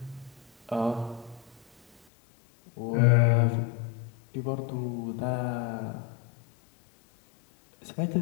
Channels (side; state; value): right; drops out; at 2.0 s